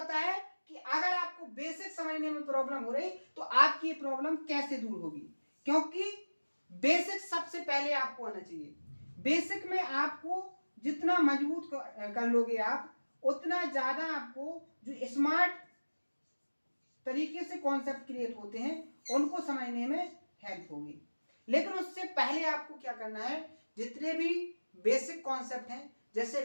है कि अगर आपको बेसिक समझने में प्रॉब्लम हो रही तो आपकी ये प्रॉब्लम कैसे दूर होगी, क्योंकि बेसिक सबसे पहले आपको आना चाहिए। बेसिक में आपको जितना मजबूत कर लोगे आप उतना ज्यादा आपको जो स्मार्ट तरीके से कॉन्सेप्ट क्रिएट होते हैं उनको समझने में हेल्प होगी। लेकिन उससे पहले आपको क्या करना है, जितने भी बेसिक कॉन्सेप्ट हैं, जैसे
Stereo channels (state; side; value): inverted; both; correlation -1.00